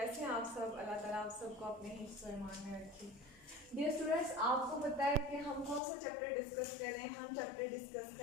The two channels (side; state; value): right; drops out; at 5.8 s